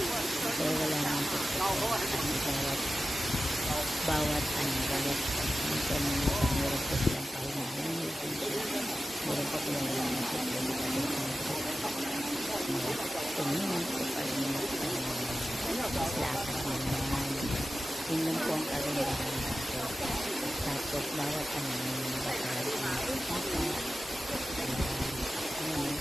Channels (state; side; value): normal; both; correlation 0.94